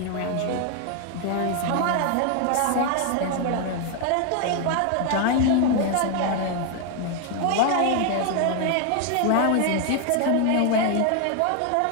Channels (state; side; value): different; both; correlation 0.00